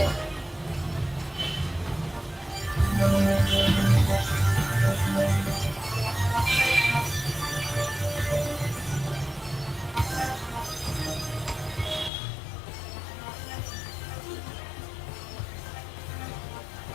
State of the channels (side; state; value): right; drops out; at 12.1 s